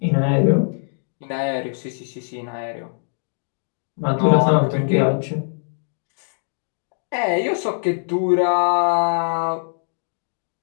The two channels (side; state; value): right; silent; digital silence